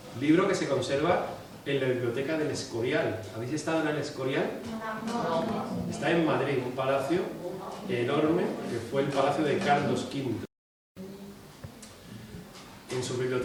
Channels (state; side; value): identical; both; correlation 1.00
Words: libro que se conserva en la biblioteca del Escorial. ¿Habéis estado en el Escorial? Está en Madrid, un palacio enorme que fue el palacio de Carlos V. En sus